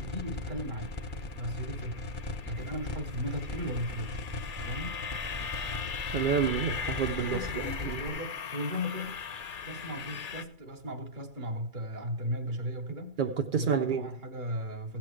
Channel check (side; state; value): left; late; 2.3 ms